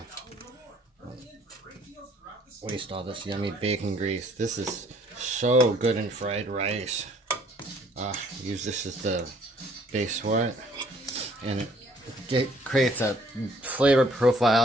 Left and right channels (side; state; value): both; normal; correlation 0.61